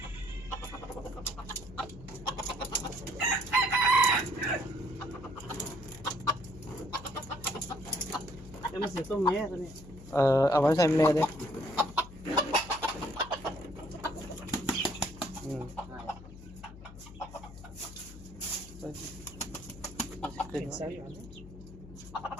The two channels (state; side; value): noise; left; hum, 16 dB below the sound